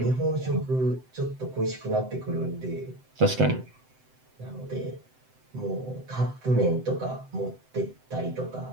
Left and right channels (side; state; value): left; late; 7.8 ms